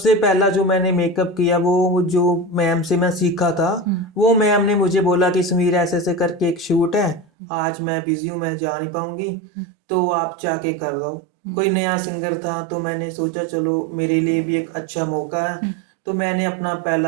पहला जो मैंने मेकअप किया वो जो मैम से मैं सीखा था, वो मैम ने मुझे बोला कि समीर ऐसे ऐसे करके एक शूट है, आज मैं बिजी हूँ, मैं जा नहीं पाऊंगी, तो आप जाके कर दो। कोई नया सिंगर था तो मैंने सोचा चलो मेरे लिए भी एक अच्छा मौका है। तो मैंने अपना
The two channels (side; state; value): left; drops out; at 7.2 s